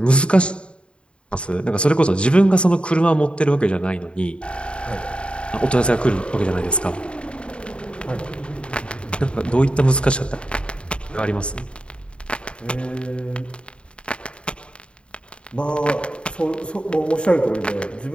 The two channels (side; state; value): right; late; 0.056 ms